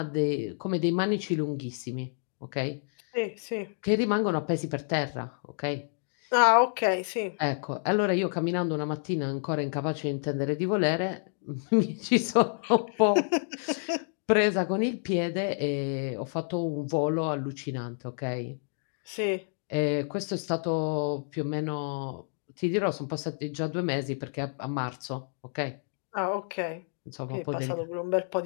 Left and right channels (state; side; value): silent; right; digital silence